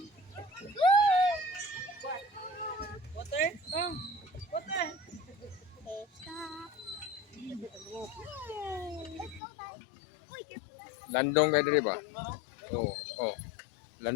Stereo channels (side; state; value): right; drops out; at 9.4 s